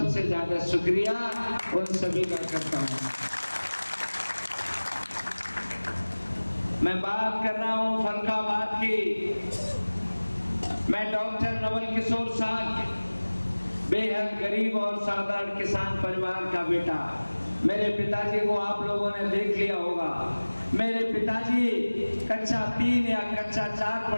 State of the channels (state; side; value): inverted; both; correlation -1.00